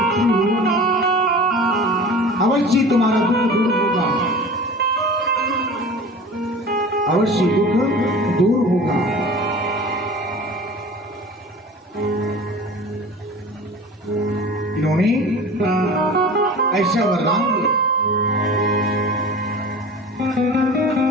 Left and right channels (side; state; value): both; normal; correlation 0.39